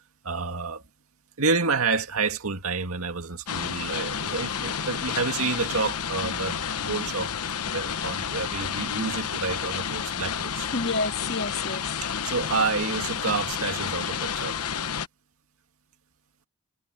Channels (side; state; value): both; normal; correlation -0.09